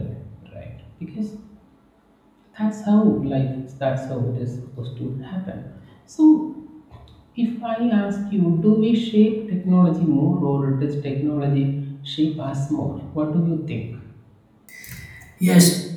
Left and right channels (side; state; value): both; identical; correlation 1.00